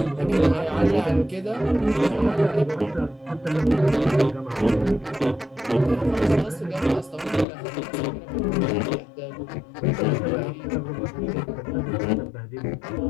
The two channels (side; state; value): right; drops out; at 7.5 s